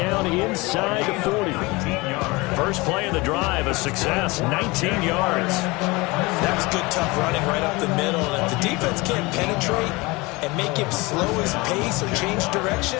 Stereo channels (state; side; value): quieter; right; 23.9 dB